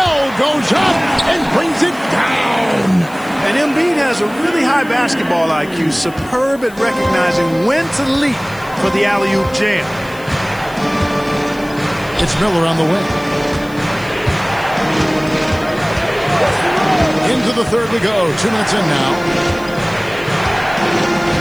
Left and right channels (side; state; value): left; noise; hiss, 23 dB below the sound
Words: goes up and brings it down. And Embiid has a really high basketball IQ. Superb at recognizing when to leap for the alley-oop jam. It's Miller on the wing. Into the third we go. 2 minutes in now.